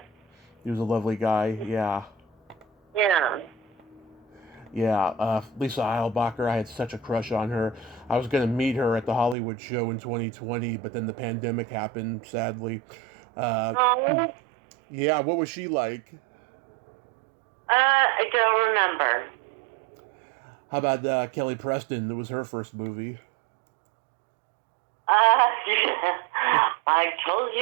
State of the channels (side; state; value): left; drops out; at 9.3 s